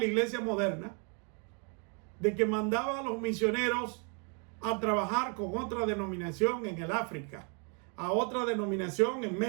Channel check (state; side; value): quieter; left; 37.9 dB